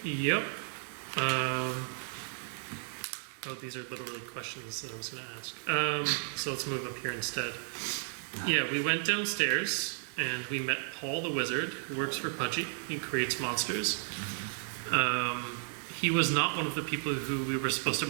Oh, these are literally questions that I was going to ask. So let's move up here instead. Yeah, we went downstairs and we met Paul the Wizard, who works for Pudgy. He creates monsters. He was not one of the people who we were supposed to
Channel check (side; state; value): left; silent; 55 dB below the other